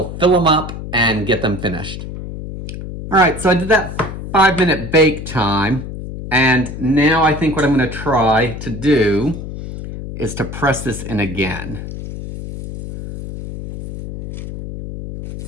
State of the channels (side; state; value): left; noise; hum, 9 dB below the sound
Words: fill them up and get them finished. All right, so I did that 5-minute bake time, and now I think what I'm gonna try to do is to press this in again.